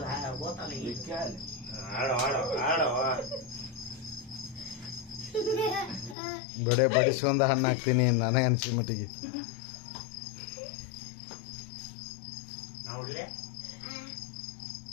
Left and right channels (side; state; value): right; drops out; at 6.2 s